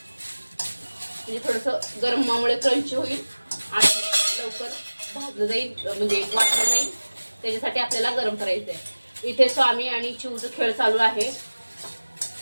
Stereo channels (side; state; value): both; inverted; correlation -1.00